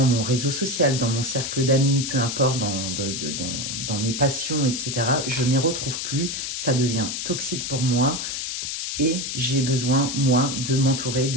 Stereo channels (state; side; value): noise; left; hiss, 4 dB below the sound